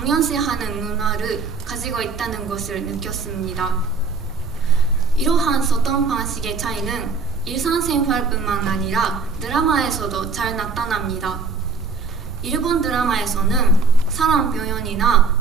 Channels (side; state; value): left; quieter; 4.4 dB